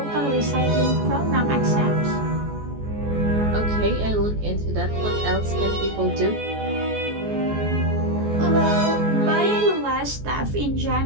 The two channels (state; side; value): late; left; 14 ms